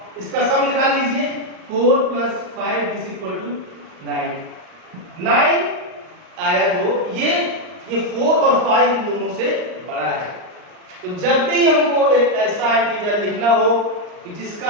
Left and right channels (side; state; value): left; late; 39 ms